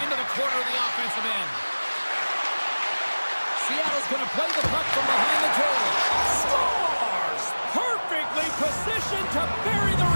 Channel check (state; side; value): inverted; both; correlation -1.00